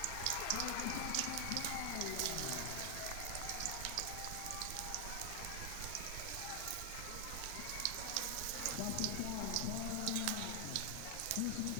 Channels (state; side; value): different; both; correlation 0.00